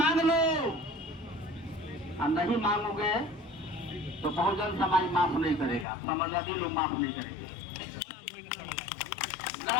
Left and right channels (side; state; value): right; drops out; at 5.9 s